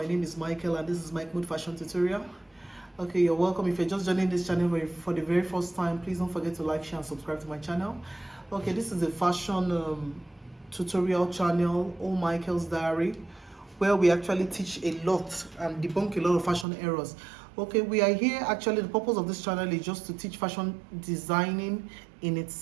name is Michael and this is Mike Mood Fashion Tutorial. Okay, you're welcome. If you're just joining this channel for the very first time, please don't forget to like, share and subscribe to my channel. Okay, this is a fashion tutorial channel, All Michael's Diary, where we actually teach a lot and debunk a lot of fashion errors. Okay, we are here, actually the purpose of this channel is just to teach fashion designing in its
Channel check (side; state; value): left; drops out; at 16.7 s